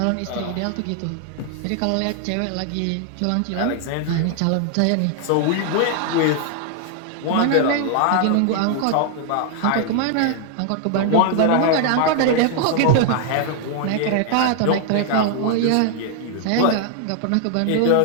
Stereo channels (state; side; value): different; both; correlation 0.00